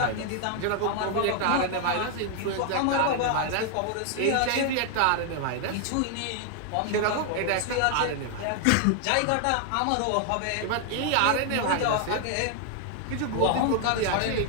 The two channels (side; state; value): both; different; correlation 0.00